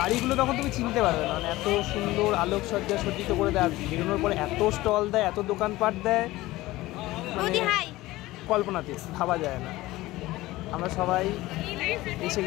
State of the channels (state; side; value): quieter; right; 18.1 dB